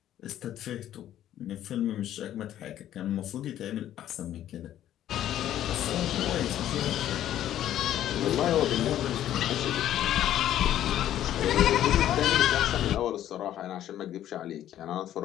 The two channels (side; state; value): right; quieter; 11.9 dB